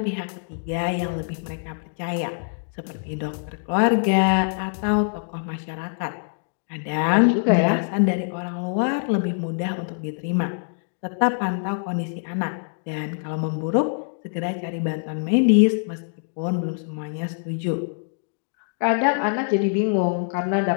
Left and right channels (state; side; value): silent; right; digital silence